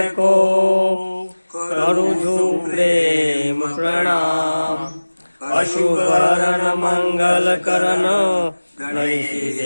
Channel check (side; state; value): both; inverted; correlation -1.00